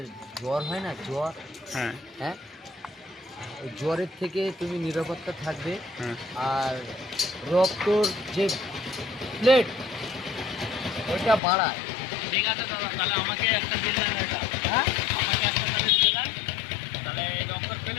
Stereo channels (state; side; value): drops out; right; at 11.4 s